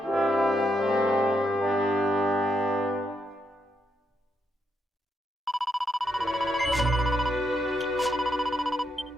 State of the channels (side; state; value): both; normal; correlation 0.80